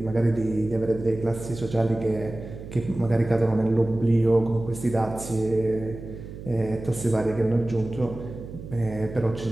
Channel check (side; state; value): right; noise; hum, 12 dB below the sound